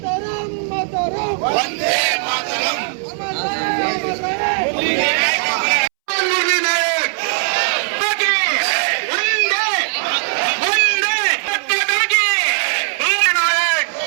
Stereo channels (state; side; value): silent; left; 67 dB below the other